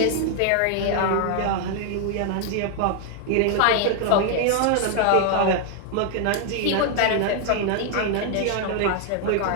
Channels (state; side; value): different; both; correlation 0.00